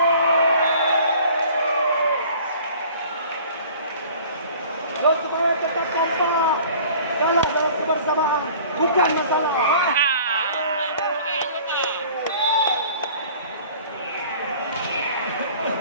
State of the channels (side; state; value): both; inverted; correlation -0.48